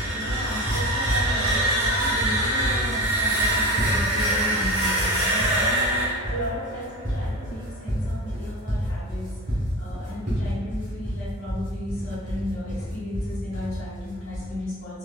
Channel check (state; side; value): normal; both; correlation 0.31